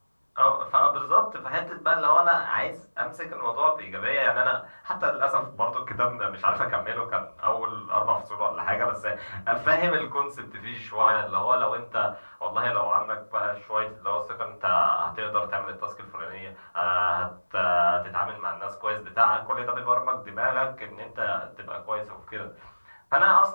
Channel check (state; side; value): inverted; both; correlation -1.00